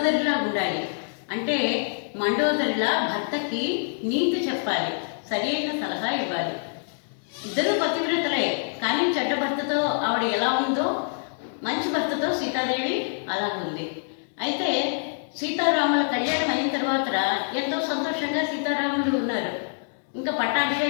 ఉండాలి. అంటే మండోదరిలా భర్తకి నీతి చెప్పాలి, సరి అయిన సలహా ఇవ్వాలి. ఇద్దరు పతివ్రతలే, కానీ చెడ్డ భర్తతో ఆవిడ ఎలా ఉందో మంచి భర్తతో సీతాదేవి అలా ఉంది. అయితే సీతారాముల కళ్యాణం అయిన తర్వాత ఎంతో సంతోషంగా సీతారాములు ఉన్నారు. ఇంకా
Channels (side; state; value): right; silent; digital silence